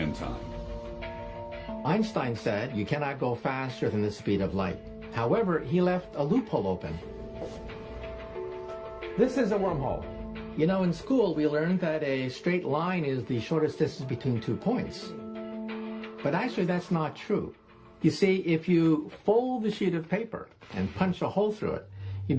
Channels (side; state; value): both; identical; correlation 1.00